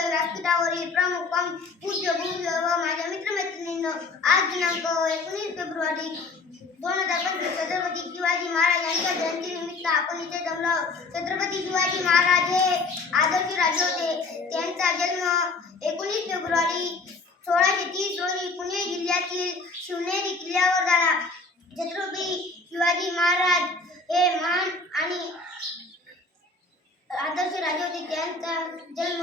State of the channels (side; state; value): right; quieter; 3.8 dB